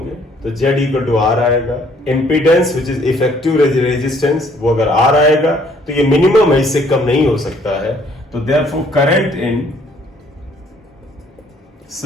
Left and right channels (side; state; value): both; normal; correlation 0.62